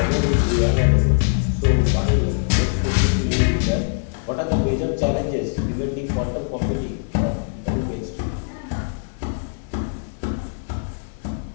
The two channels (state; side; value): silent; right; 64 dB below the other